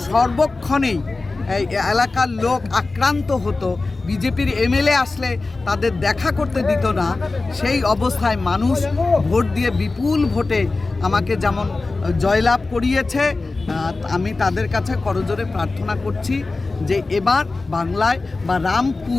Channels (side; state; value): right; quieter; 3.5 dB